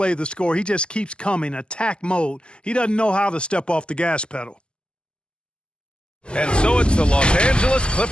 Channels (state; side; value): late; right; 0.050 ms